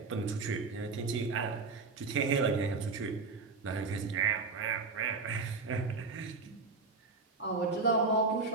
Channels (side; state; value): left; quieter; 4.2 dB